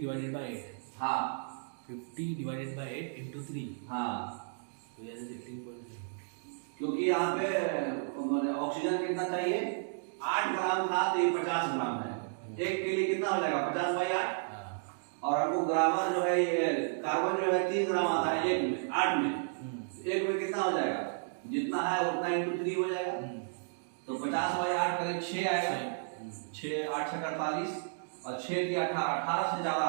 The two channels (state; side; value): silent; left; digital silence